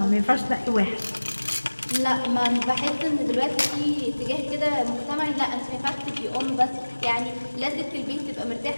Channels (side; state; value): both; inverted; correlation -1.00